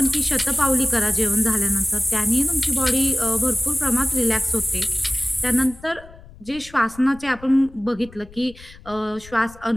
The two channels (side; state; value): left; noise; rumble, 21 dB below the sound